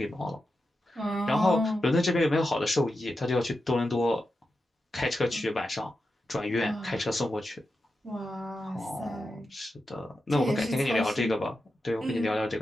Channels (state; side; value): normal; both; correlation 0.89